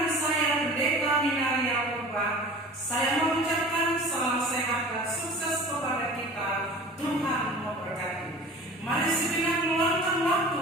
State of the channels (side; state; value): both; normal; correlation 0.41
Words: saya Pendeta Minaria Purba. Saya mengucapkan salam sehat dan sukses kepada kita. Tuhan memberkati. Mari sejenak meluangkan waktu